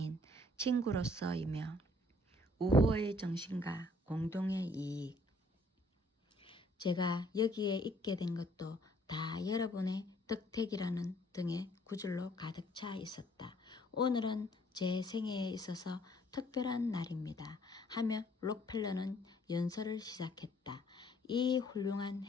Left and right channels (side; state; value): both; normal; correlation 0.62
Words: 친구로서이며 우호의 정신과 공동의 이익. 제가 여기에 있게 된 것도 다 여러분의 덕택이라는 등의 구절로 가득 차 있었다. 오늘은 제 생애에 있어서 특별한 날입니다. 하며 록펠러는 연설을 시작했다. 이 훌륭한